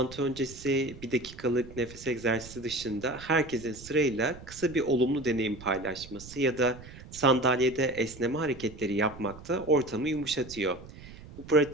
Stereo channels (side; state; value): right; noise; rumble, 17 dB below the sound